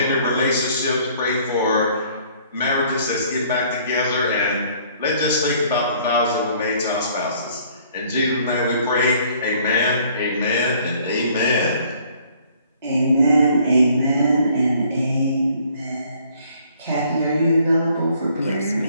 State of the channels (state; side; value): inverted; both; correlation -0.60